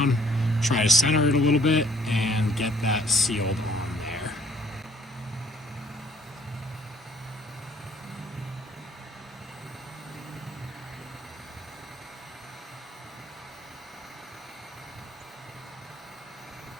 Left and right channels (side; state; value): both; normal; correlation 0.60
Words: try to center it a little bit, and get that sealed on there.